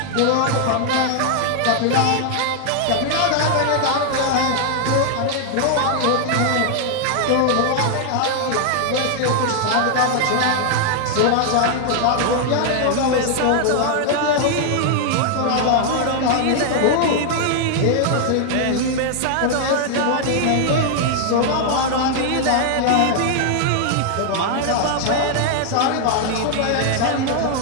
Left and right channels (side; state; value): both; different; correlation 0.00